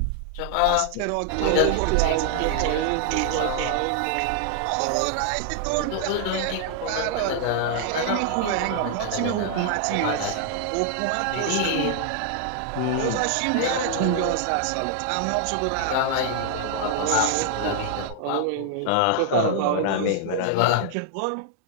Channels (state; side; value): different; both; correlation 0.00